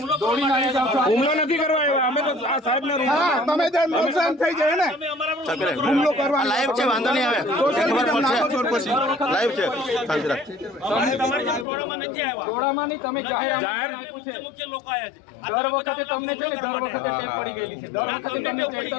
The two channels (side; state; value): right; drops out; at 11.7 s